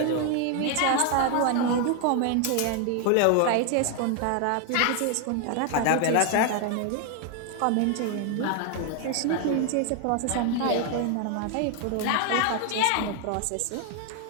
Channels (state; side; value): different; both; correlation 0.00